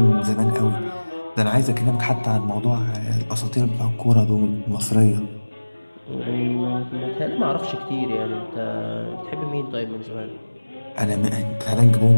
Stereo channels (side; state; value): both; inverted; correlation -1.00